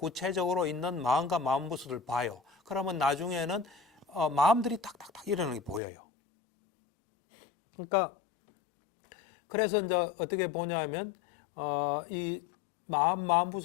있는 마음과 마음부수를 봐요. 그러면 나중에는 마음들이 탁탁탁 일어나는 게 보여요. 그러니까 그래서 이제 어떻게 보냐면 이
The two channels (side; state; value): right; drops out; at 5.8 s